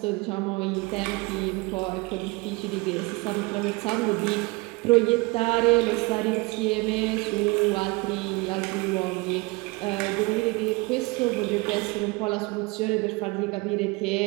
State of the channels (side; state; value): left; quieter; 25.0 dB